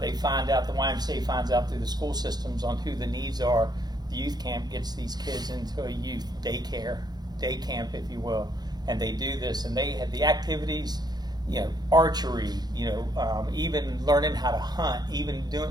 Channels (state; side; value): late; left; 0.20 ms